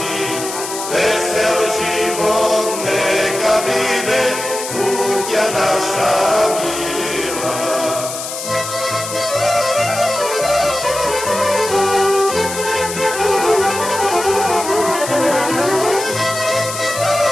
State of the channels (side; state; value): left; noise; hiss, 7 dB below the sound